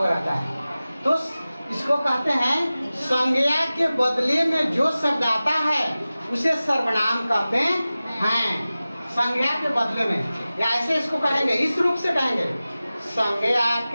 रहता है। तो इसको कहते हैं संज्ञा के बदले में जो शब्द आता है उसे सर्वनाम कहते हैं। संज्ञा के बदले में, या ऐसे इसको कहेंगे, इस रूप से कहेंगे, संज्ञा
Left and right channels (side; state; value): both; inverted; correlation -0.96